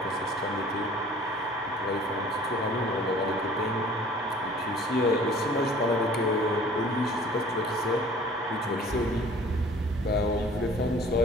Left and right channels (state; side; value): normal; both; correlation 0.50